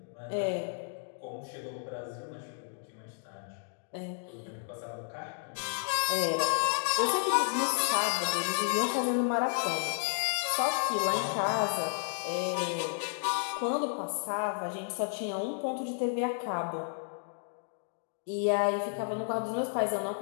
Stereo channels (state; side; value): silent; right; digital silence